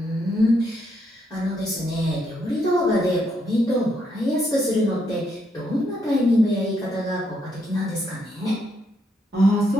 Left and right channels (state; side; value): normal; both; correlation 0.76